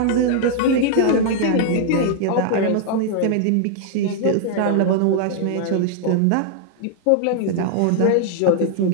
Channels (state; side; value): different; both; correlation -0.01